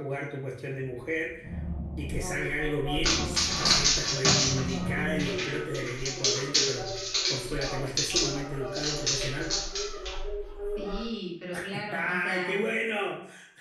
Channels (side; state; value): both; identical; correlation 1.00